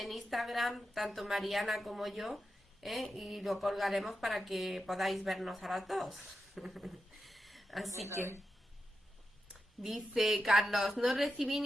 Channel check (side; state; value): both; normal; correlation 0.88